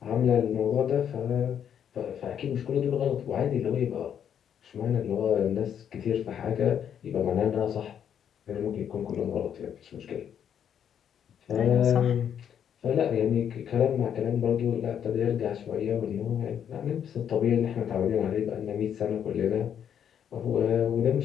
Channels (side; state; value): right; quieter; 8.8 dB